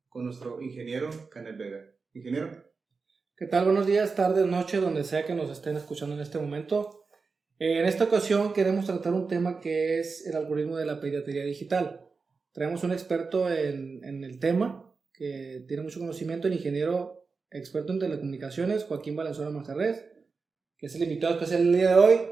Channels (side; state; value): left; quieter; 4.6 dB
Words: con nuestro ingeniero Canet Vega. Ingeniero. ¿Qué tal? Buenos días, tardes, noches, donde sea que nos estén escuchando en este momento. En esta ocasión queremos tratar un tema que es el algoritmo de la piratería digital. Traemos un experto en el tema que tiene mucho conocimiento, el ingeniero experto en telecomunicaciones, Joaquín Valenzuela Manjarrés, que es el invitado especial del día de hoy.